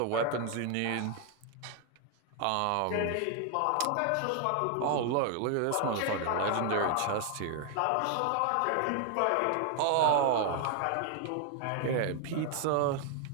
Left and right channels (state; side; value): different; both; correlation 0.00